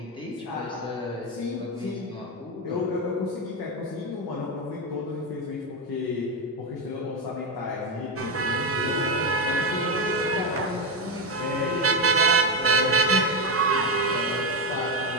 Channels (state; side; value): normal; both; correlation 0.09